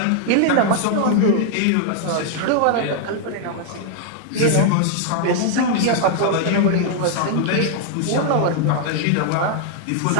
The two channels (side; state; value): both; different; correlation 0.00